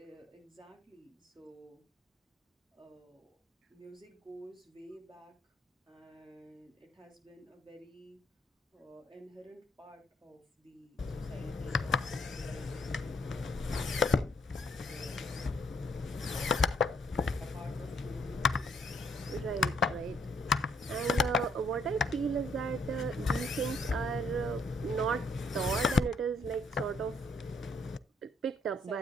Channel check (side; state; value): both; normal; correlation 0.69